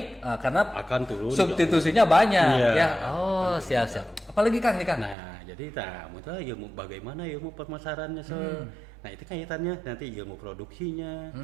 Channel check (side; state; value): left; drops out; at 5.2 s